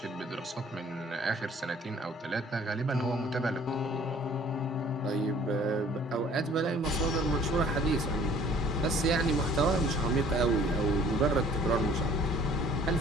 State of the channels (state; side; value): normal; both; correlation 0.54